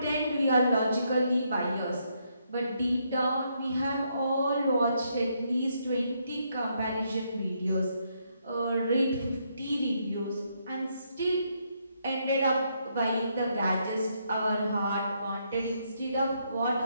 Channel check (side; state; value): both; inverted; correlation -0.75